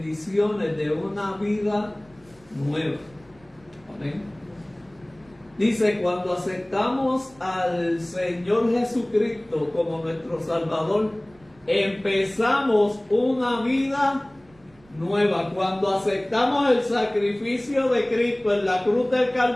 de una vida nueva. Amén. Dice, cuando aceptamos al Señor Jesucristo como nuestro Salvador, empezamos una vida nueva. Cuando aceptamos el sacrificio de Cristo en la cruz del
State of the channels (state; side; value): noise; right; rumble, 30 dB below the sound